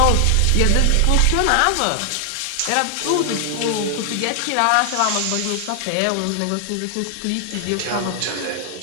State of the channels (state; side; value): different; both; correlation 0.00